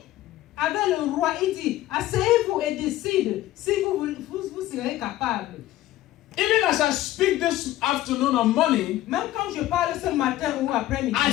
Avec le roi, il dit, asseyez-vous et décide si vous serez capable. Even as I speak this afternoon or morning, Même quand je parle ce matin ou après-midi, I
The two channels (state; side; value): quieter; right; 15.0 dB